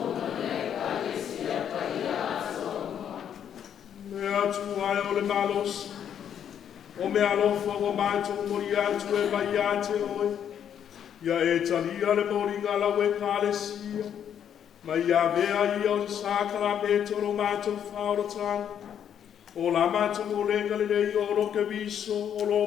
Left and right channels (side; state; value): right; quieter; 9.0 dB